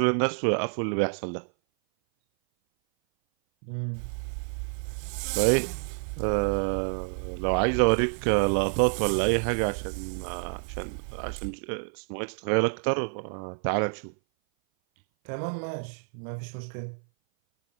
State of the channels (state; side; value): silent; left; 57 dB below the other